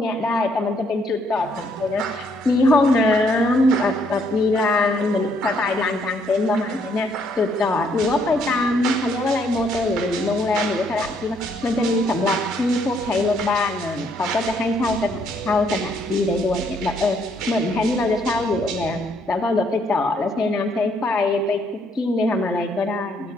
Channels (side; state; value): both; normal; correlation 0.70